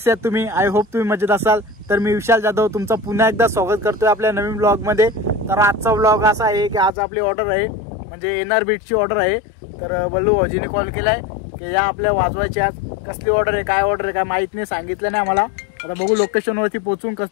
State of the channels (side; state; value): right; drops out; at 6.9 s